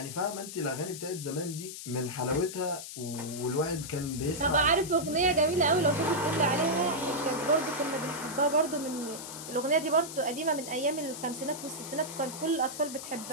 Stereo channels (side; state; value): left; noise; hiss, 10 dB below the sound